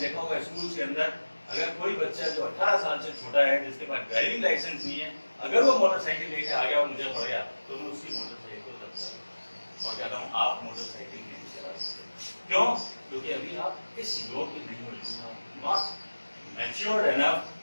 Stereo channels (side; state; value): both; inverted; correlation -1.00